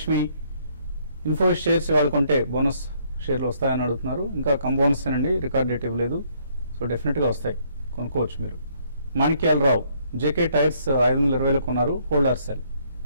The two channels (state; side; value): inverted; both; correlation -0.68